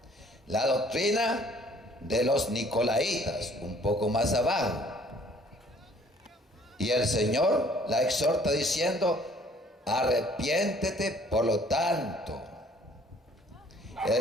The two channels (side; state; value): both; normal; correlation 0.57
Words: la doctrina de los Nicolaitas, un poco más abajo. Y el Señor la exhorta diciendo: arrepiéntete por lo tanto.